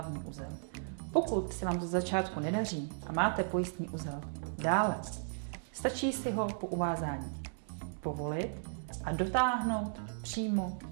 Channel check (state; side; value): silent; left; digital silence